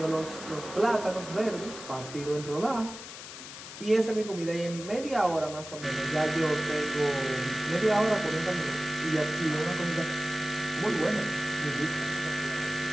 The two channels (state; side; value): noise; left; hiss, 12 dB below the sound